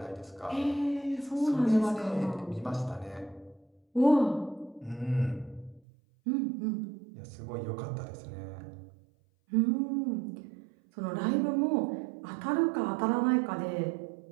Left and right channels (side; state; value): left; drops out; at 5.8 s